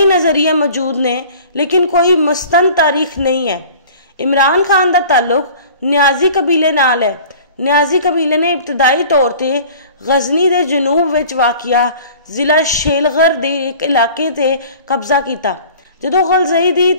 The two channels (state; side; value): inverted; both; correlation -0.45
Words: नज़रिए मौजूद ने, लेकिन कोई मुस्तंद तारीख नहीं है। इमरान खान का ताल्लुक न्याजी कबीले नाल है। न्याजी कबीले ने इब्तदाई तौर पर गजनी के जनूब विच वाकिया जिला शेलगर के एक इलाके ते कब्जा किया। जदों गलजई की